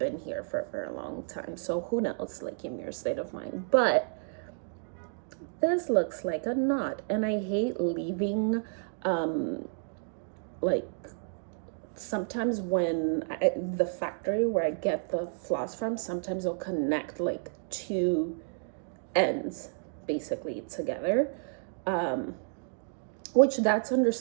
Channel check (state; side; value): silent; left; digital silence